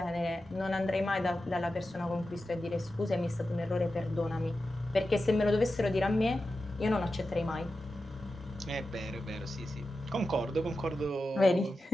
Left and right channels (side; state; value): both; normal; correlation 0.92